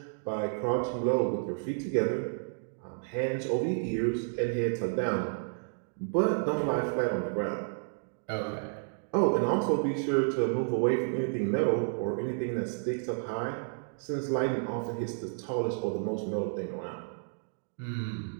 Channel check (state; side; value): silent; left; digital silence